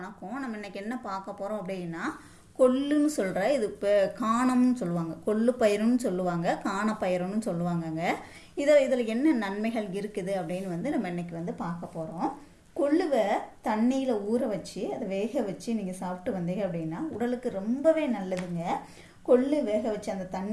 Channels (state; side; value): identical; both; correlation 1.00